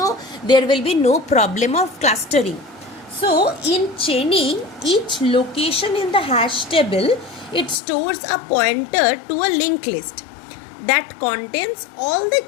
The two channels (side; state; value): right; drops out; at 7.8 s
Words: there will be no problem of clustering. So in chaining, each location in the hash table, it stores a pointer to a linked list that contains all the